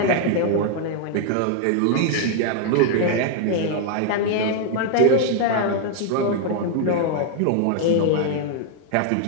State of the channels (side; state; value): both; different; correlation 0.00